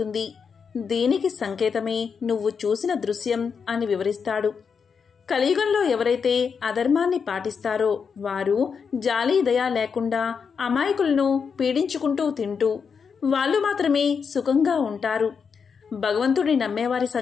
దీనికి సంకేతమే నువ్వు చూసిన దృశ్యం అని వివరిస్తాడు. కలియుగంలో ఎవరైతే అధర్మాన్ని పాటిస్తారో వారు జాలి దయ లేకుండా అమాయకులను పీడించుకుంటూ తింటూ వాళ్ళు మాత్రమే సుఖంగా ఉంటారు. భగవంతుడిని నమ్మేవారి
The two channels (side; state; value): right; quieter; 6.1 dB